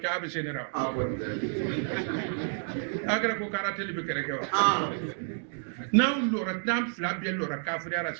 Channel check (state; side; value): silent; left; 58 dB below the other